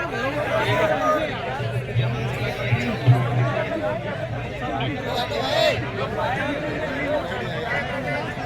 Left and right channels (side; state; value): both; identical; correlation 1.00